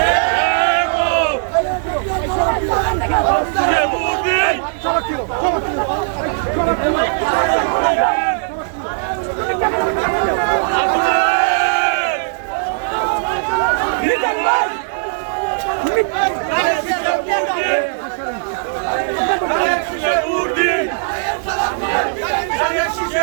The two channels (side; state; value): left; silent; digital silence